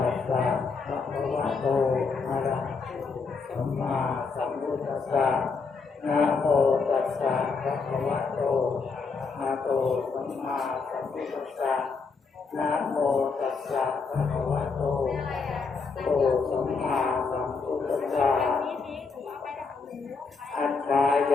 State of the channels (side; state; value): right; quieter; 4.8 dB